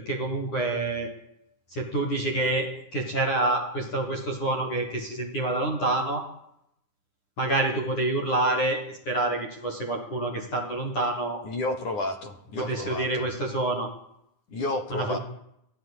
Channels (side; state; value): right; late; 9.9 ms